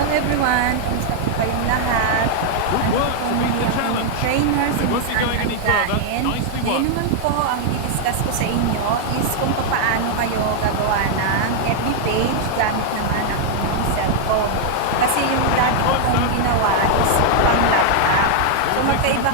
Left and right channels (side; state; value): both; different; correlation 0.00